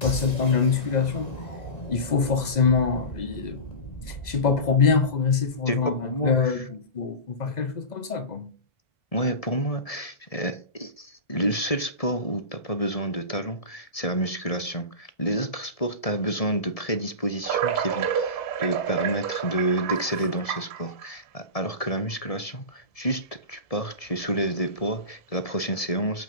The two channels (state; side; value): late; right; 2.0 ms